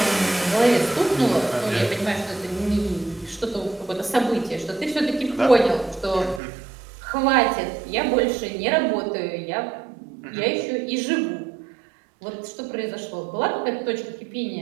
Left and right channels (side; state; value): left; drops out; at 6.4 s